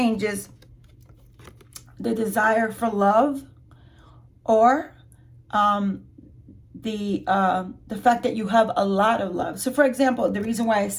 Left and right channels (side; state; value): both; identical; correlation 1.00